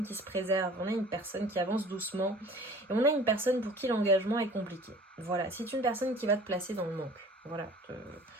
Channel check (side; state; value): both; normal; correlation 0.46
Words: qui se préserve, on a une personne qui avance doucement, et on a une personne pour qui l'engagement est compliqué. Voilà, c'est une personne qui va te placer dans le manque. Voilà,